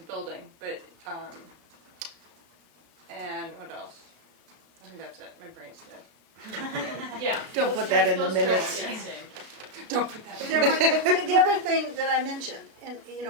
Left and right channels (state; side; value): late; left; 33 ms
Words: building, but and what else? I think that's it. My brain's dead. Yeah. Don't put that in the minutes. Don't put that. But there might, the other thing that I mentioned, and you